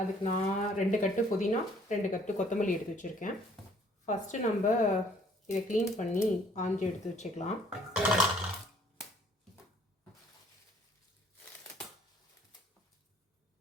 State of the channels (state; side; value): normal; both; correlation 0.60